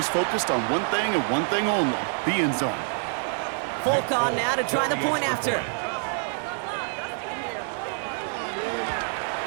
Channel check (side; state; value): left; silent; 55 dB below the other